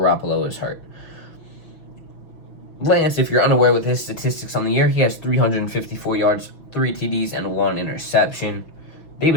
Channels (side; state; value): right; late; 6.1 ms